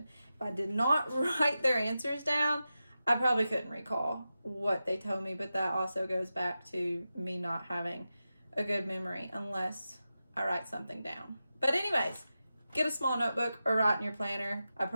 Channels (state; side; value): inverted; both; correlation -0.92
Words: If I did not write their answers down, I probably couldn't recall what they told me, but that also goes back to me not having a good memory unless I write something down. But anyways, get a small notebook or write in your planner. I